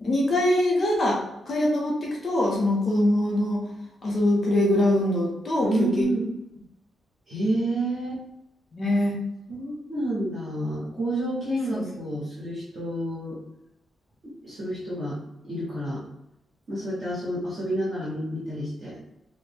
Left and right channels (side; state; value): both; normal; correlation 0.81